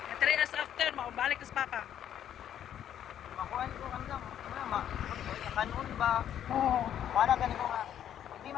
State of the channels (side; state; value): right; quieter; 10.2 dB